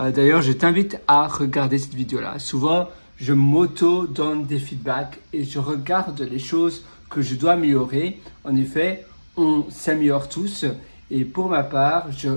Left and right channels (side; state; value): both; inverted; correlation -1.00